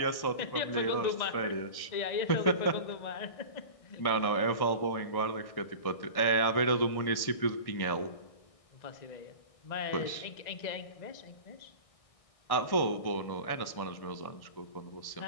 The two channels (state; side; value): late; right; 1.6 ms